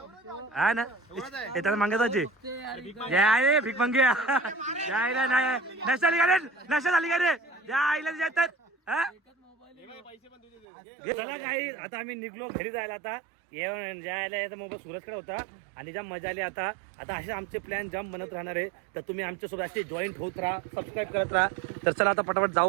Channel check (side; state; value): left; drops out; at 10.7 s